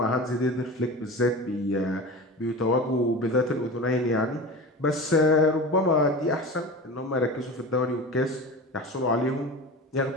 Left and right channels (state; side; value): normal; both; correlation 0.31